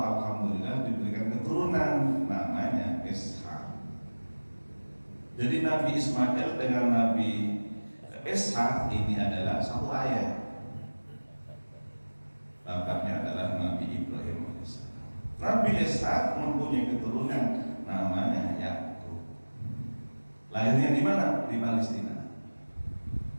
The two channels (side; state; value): both; inverted; correlation -1.00